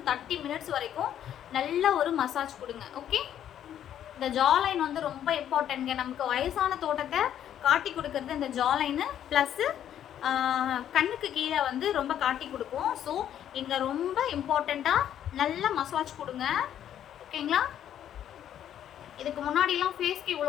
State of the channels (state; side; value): quieter; right; 10.4 dB